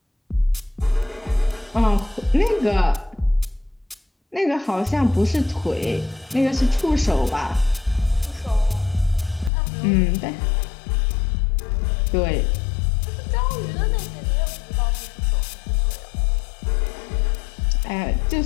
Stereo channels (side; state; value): right; drops out; at 9.5 s